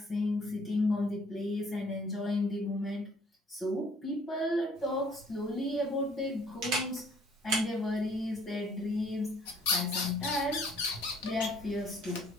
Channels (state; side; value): normal; both; correlation 0.59